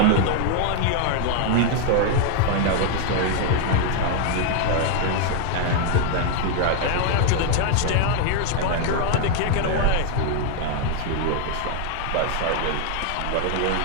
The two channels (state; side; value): different; both; correlation 0.00